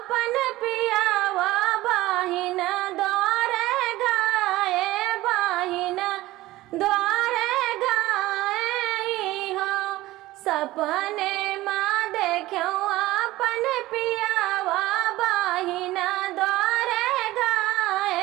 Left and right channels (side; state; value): left; quieter; 17.5 dB